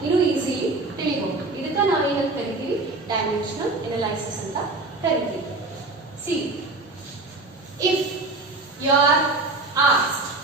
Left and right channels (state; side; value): quieter; left; 3.2 dB